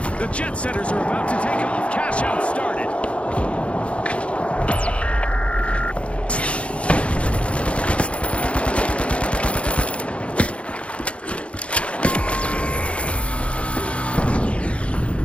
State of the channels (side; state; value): right; late; 0.061 ms